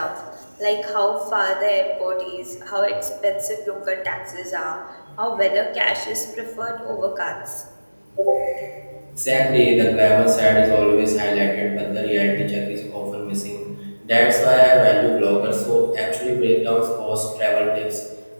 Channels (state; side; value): inverted; both; correlation -1.00